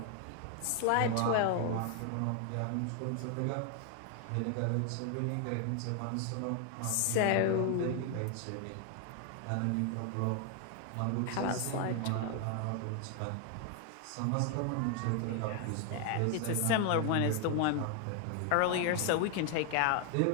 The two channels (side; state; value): both; different; correlation 0.00